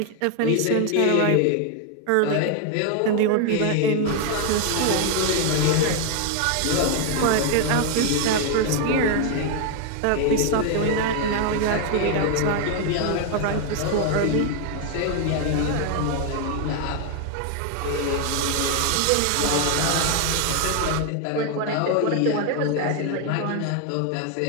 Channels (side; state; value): both; different; correlation 0.00